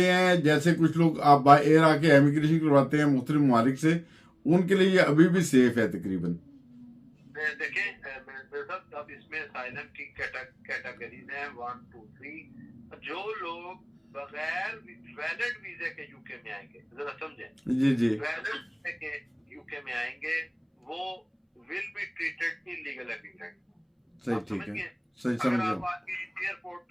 हैं, जैसे कुछ लोग आप बाय एयर आके इमिग्रेशन करवाते हैं मुख्तलिफ ममालिक से, उनके लिए ये अभी भी सेफ है तकरीबन? देखें मेरे साथ अब इसमें असाइलम की कैटेगरीज हैं 1, 2, 3। जो लोग बगैर वैलिड वीजे के यूके में आएंगे, जरा समझें, वैलिड वीजे के यूके में आएंगे वो will be treated illegal immigrant. सही, ठीक है, सही अगर समझ आप आके एयरपोर्ट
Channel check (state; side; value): identical; both; correlation 1.00